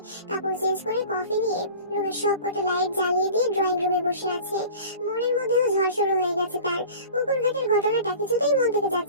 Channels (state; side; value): inverted; both; correlation -0.40